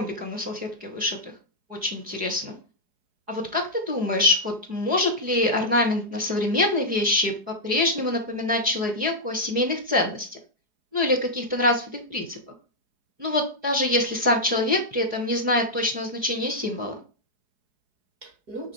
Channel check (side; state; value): left; late; 4.8 ms